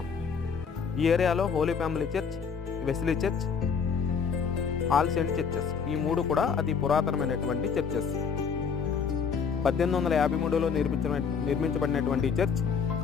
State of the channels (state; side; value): quieter; right; 6.2 dB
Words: ఈ ఏరియాలో holy family church, Wesley church, all saint churches, ఈ మూడు కూడా అతి పురాతనమైనటువంటి చర్చెస్. 1853లో నిర్మించబడినటువంటి ఈ చర్చ్